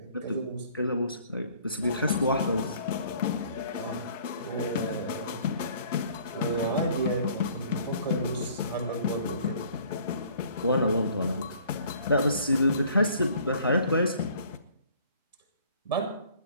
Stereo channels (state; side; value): inverted; both; correlation -0.55